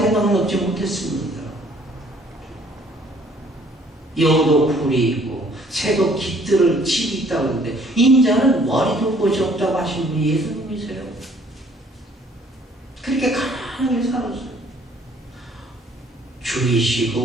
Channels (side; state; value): both; normal; correlation 0.60